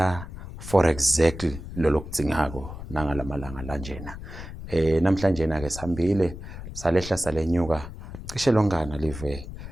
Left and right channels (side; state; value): left; noise; rumble, 11 dB below the sound